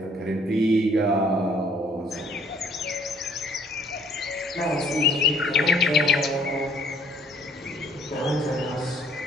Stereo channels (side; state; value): both; normal; correlation 0.60